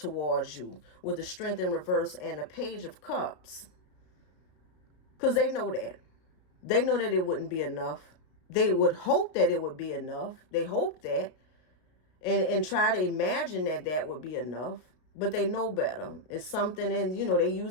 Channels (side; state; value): right; late; 32 ms